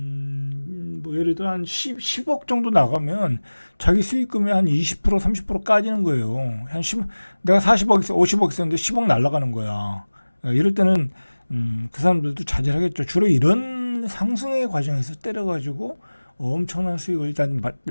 뭐 예를 들어 한 10억 정도 나가면 자기 수익금의 한 20% 30% 까지는 거예요. 내가 40억 있어 50억 있었는데 10억 날아가는 거야. 이럴 때는 그 사람들도 자제하겠죠. 주로 이런 상승의 과정에서 때려가지고 엄청난 수익을 일단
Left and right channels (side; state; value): both; inverted; correlation -1.00